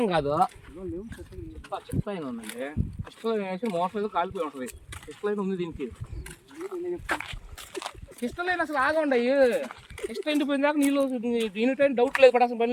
కాదు చెక్ లైన్ ఉందండి చెక్ లైన్ వేసి మోటార్ ఏదో కాలిపోయి ఉంటుంది చెక్ లైన్ ఉంది దీనికి చెక్ లైన్ అసలు ఆగండి చెక్ లైన్ పోయిన దాకా నీళ్ళు దీనిటైనా డౌట్ లేదు పడాల్సిన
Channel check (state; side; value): identical; both; correlation 1.00